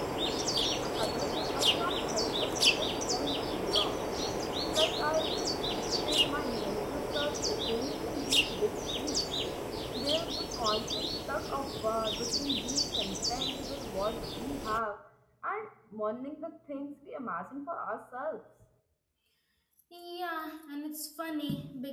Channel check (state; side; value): identical; both; correlation 1.00